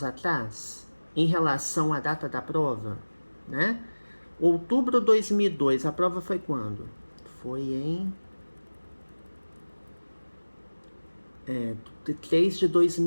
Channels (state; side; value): inverted; both; correlation -1.00